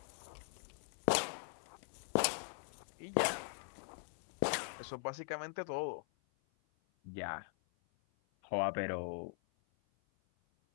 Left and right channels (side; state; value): right; silent; 50 dB below the other